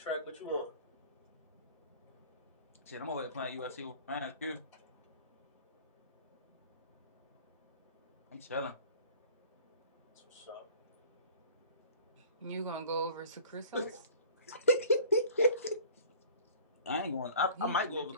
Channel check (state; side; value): inverted; both; correlation -0.47